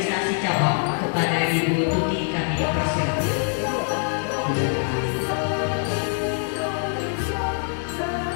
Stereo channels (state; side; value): silent; right; 55 dB below the other